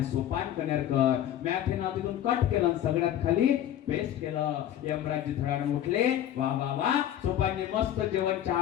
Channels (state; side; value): quieter; right; 11.4 dB